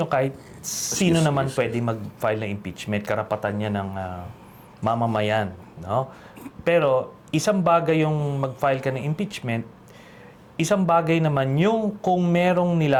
kahit sino naman pwede mag-file ng impeachment, karapatan niya ng mamamayan. No? Pero isang bagay yung mag-file ka ng impeachment, isang bagay naman yung kung merong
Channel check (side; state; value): both; identical; correlation 1.00